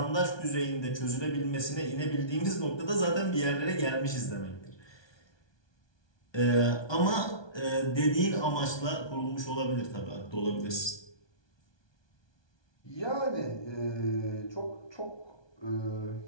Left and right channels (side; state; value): right; late; 1.2 ms